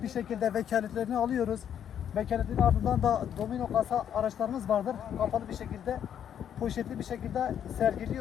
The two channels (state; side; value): quieter; right; 9.3 dB